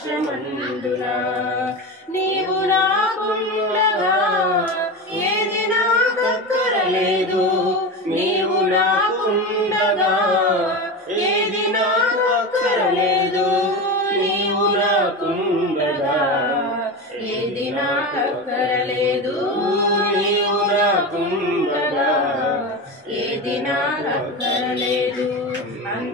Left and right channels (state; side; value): normal; both; correlation 0.23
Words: నీవు నాకుండగా ఏది నాకక్కరలేదు, నీవు నాకుండగా ఏది నాకక్కరలేదు, నీవు నాకుండగా ఏది నాకక్కరలేదు, నీవు నాకుండగా ఏది నాకక్కరలేదు.